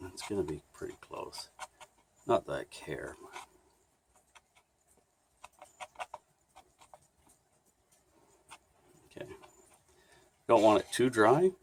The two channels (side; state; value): both; identical; correlation 1.00